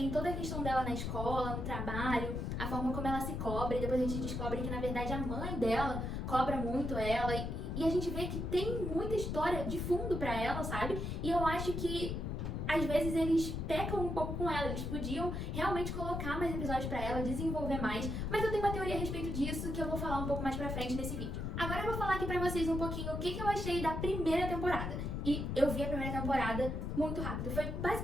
toda a questão dela na escola, no trabalho, a forma como ela se cobra, e depois a gente descobre que, na verdade, a mãe dela cobra muito ela, e a gente vê que tem muita história de fundo pra ela, sabe? E eu acho que às vezes eles pecam um pouco com ela, eles podiam realmente colocar mais episódios pra ela, desenvolver mais, mas eu tenho uma teoria a respeito disso que eu vou falar um pouco mais pra frente nesse vídeo. Agora eu vou falar aqui pra vocês um pouquinho o que eu achei da primeira temporada. E eu vi a primeira temporada muito rápido, foi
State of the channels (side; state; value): left; noise; rumble, 3 dB below the sound